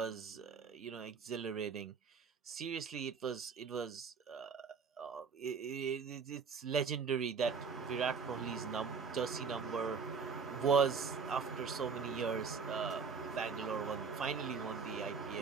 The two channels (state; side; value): quieter; left; 5.6 dB